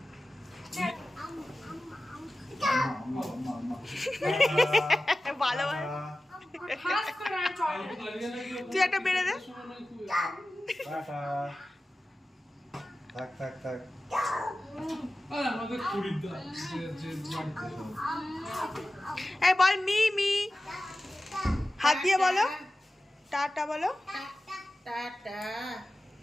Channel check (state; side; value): normal; both; correlation 0.95